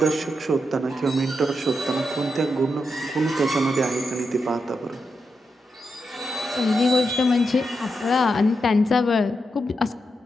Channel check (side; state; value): both; normal; correlation 0.85